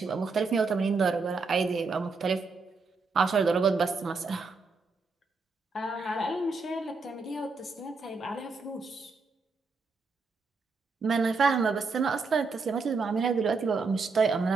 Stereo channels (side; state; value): left; quieter; 4.2 dB